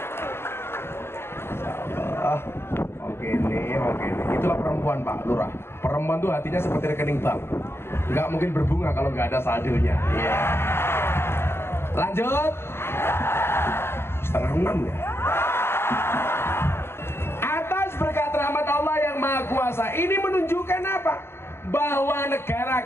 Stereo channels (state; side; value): late; right; 0.12 ms